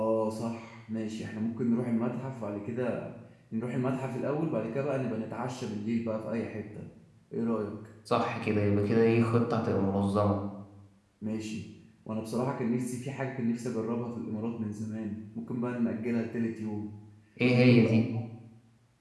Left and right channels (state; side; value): identical; both; correlation 1.00